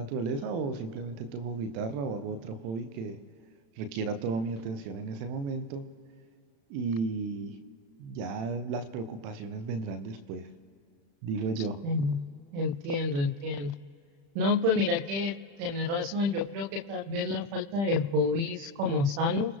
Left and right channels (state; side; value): late; left; 36 ms